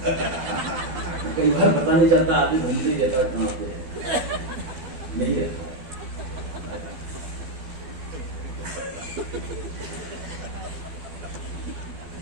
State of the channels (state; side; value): late; left; 12 ms